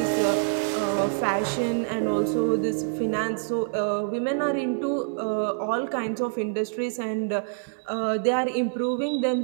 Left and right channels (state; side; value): silent; left; 61 dB below the other